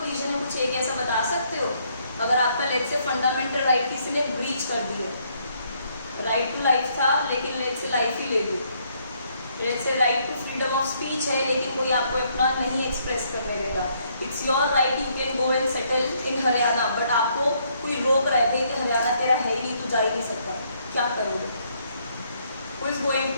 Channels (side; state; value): both; inverted; correlation -0.70